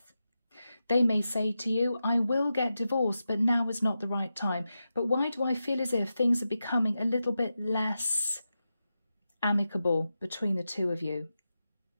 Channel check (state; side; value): inverted; both; correlation -0.90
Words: They may say to you, I will get divorced, but now is not the right time. But why do I feel as if things are becoming a little bit less amicable between the two of you?